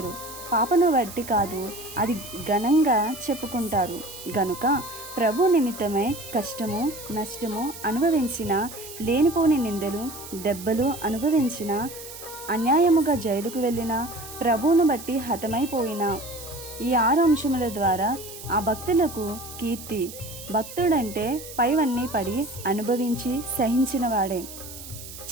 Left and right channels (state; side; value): noise; right; hiss, 13 dB below the sound